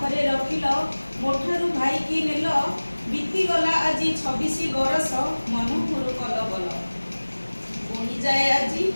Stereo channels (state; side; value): inverted; both; correlation -1.00